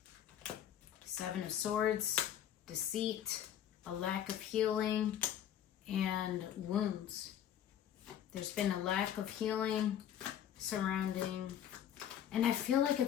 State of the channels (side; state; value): right; quieter; 10.2 dB